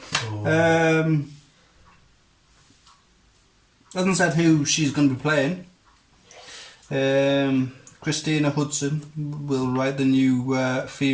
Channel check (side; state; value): both; identical; correlation 1.00